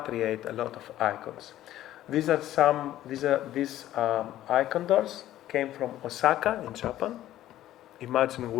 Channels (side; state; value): right; quieter; 13.5 dB